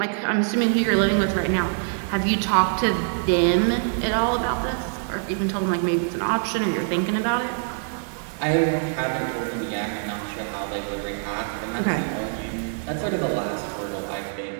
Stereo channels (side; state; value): left; silent; 57 dB below the other